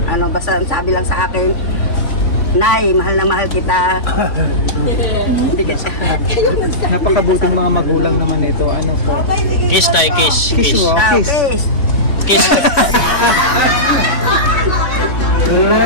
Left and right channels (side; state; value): right; late; 3.5 ms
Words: basta sabi lang sa akin, Nay, mahal na mahal kita. Napakabuting mga magulang naman ito. Ano po? Kiss tayo, kiss. Kiss mo. Kiss. Kiss.